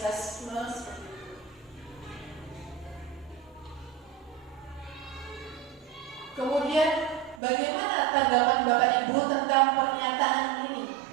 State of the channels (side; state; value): left; drops out; at 7.4 s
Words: seperti itu. Kemudian bagaimana tanggapan Bapak Ibu tentang pernyataan ini?